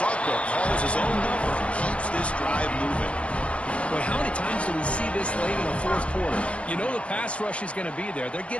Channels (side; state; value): right; late; 0.061 ms